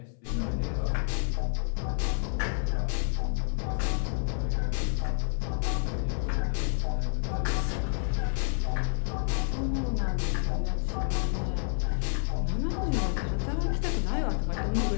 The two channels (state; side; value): silent; right; 58 dB below the other